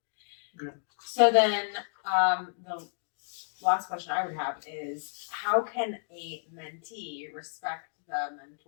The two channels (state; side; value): silent; right; digital silence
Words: Good. So then, the last question I would have is, how can a mentee respect the